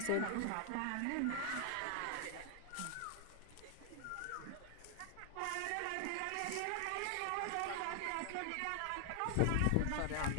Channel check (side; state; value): both; different; correlation 0.00